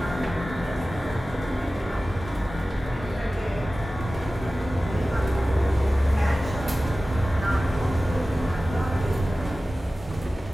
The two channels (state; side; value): normal; both; correlation 0.96